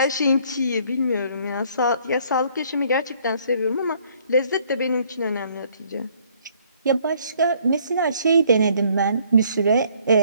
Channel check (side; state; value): both; inverted; correlation -0.62